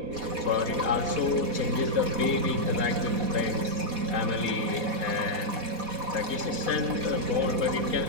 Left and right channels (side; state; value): left; late; 4.1 ms